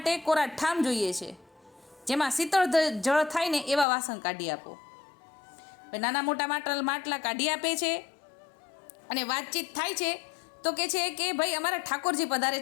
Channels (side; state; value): right; drops out; at 3.9 s